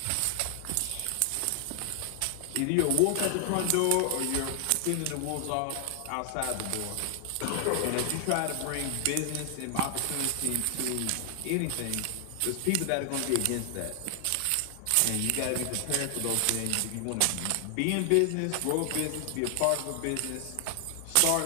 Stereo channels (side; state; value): both; different; correlation 0.00